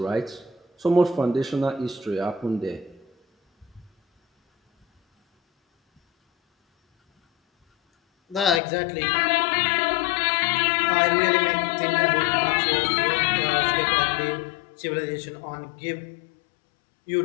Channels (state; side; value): drops out; right; at 8.6 s